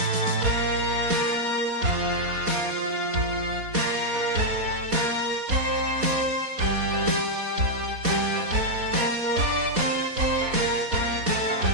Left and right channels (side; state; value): left; late; 4.1 ms